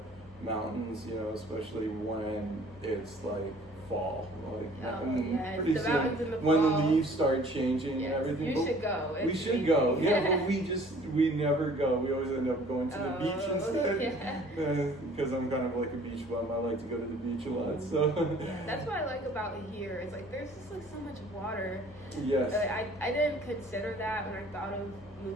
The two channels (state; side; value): normal; both; correlation 0.53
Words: Mountains, especially when it's like fall. Pretty the soon, mountains in the when fall. the leaves start changing and everything. You should go. We should go. Yeah, but we never go. We always end up going to the beach instead. Because I'm kind of like a beach bum. I like to go to the beach a lot. So that's what I like about here. Is like there's just like so much water. Yes. I didn't consider that when I thought of